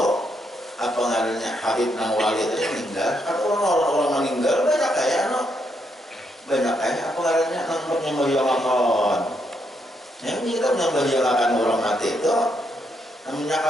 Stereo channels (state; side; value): normal; both; correlation 0.77